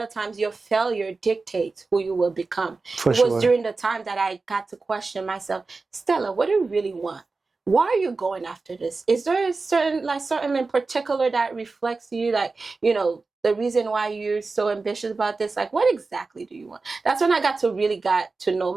of times your failure dictates who you will become. It was during the time that I got to question myself, Stella, what do you really want? Why are you going after this? Is there something in particular that reflects you, like, the reason why you're so ambitious about this? Like, what exactly do you want? That's when I got to know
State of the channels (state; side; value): quieter; left; 3.9 dB